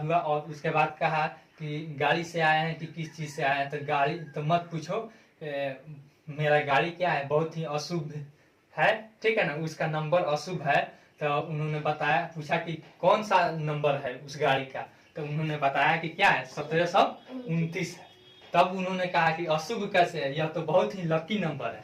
और उसके बाद कहा कि गाड़ी से आए हैं कि किस चीज से आए हैं, तो गाड़ी तो मत पूछो, मेरा गाड़ी क्या है, बहुत ही अशुभ है, ठीक है ना, उसका नंबर अशुभ है। तो उन्होंने बताया, पूछा कि कौन सा नंबर है उस गाड़ी का, तो उन्होंने बताया कि क्या है 1729 है। तब उन्होंने कहा कि अशुभ कैसे है, यह तो बहुत ही लकी नंबर है।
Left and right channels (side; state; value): both; identical; correlation 1.00